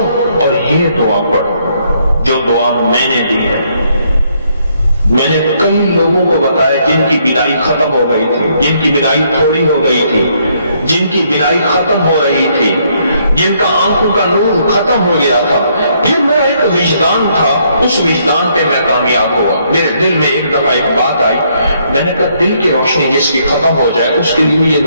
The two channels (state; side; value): inverted; both; correlation -0.71